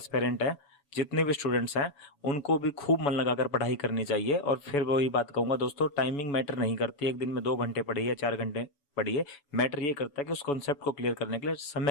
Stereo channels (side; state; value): right; late; 7.0 ms